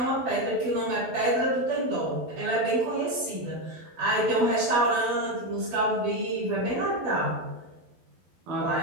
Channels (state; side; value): late; left; 12 ms